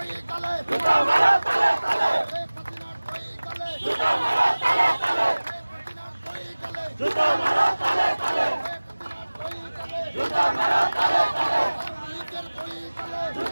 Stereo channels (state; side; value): inverted; both; correlation -1.00